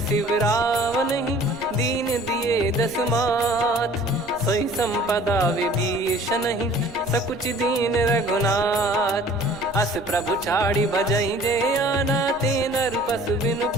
रावण ही, दीन दिए दस मात। सोई संपदा विभीषण ही, सकुच दीन रघुनाथ। अस प्रभु छाड़ी भजई जे आना, ते नर पशु बिनु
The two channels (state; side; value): noise; right; rumble, 24 dB below the sound